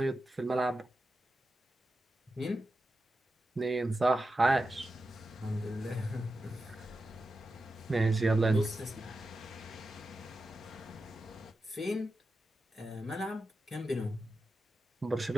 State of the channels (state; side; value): normal; both; correlation 0.91